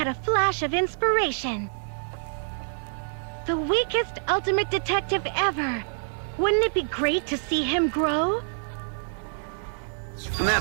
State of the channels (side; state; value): left; silent; digital silence